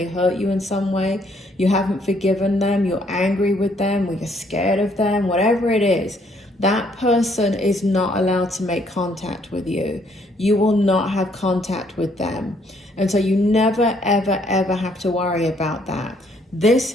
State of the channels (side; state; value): both; normal; correlation 0.67